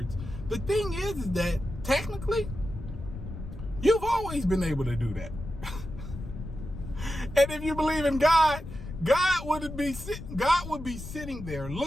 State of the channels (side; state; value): left; noise; rumble, 10 dB below the sound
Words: The thing is that technically, you've always been able to do that. And if you believe in God, God would be sitting there